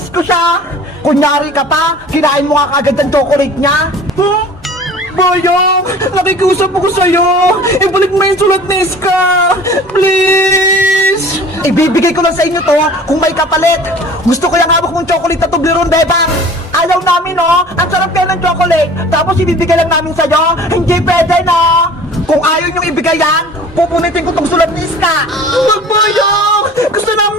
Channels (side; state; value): both; normal; correlation 0.44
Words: ko siya! Kunyari ka pa, kinain mo nga kagad ang chocolate niya! Huh? Boyong! Nakikusap ako sa'yo! Ibalik mo yung sulat ni Iska! Please! Ibibigay ko lang sa inyo to kung may kapalit! Gusto ko yung hawak mong chocolate na Toblerone, Bebang! Ayaw namin, no? Ang sarap kayo ng chocolate! Tapos ibibigay lang namin sa'yo! Hindi pwede, no? Kung ayaw niyong ibigay yan, pupunitin ko tong sulat ni Iska! Huwag, Boyong! Gusto